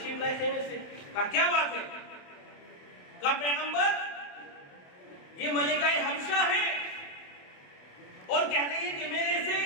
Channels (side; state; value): right; late; 28 ms